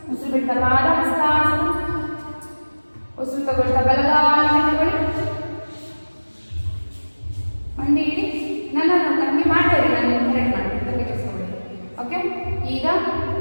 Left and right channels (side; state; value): both; inverted; correlation -1.00